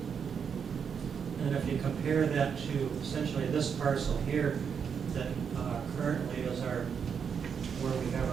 And if you compare that to essentially this parcel here, that currently is where we have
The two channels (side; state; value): left; quieter; 6.9 dB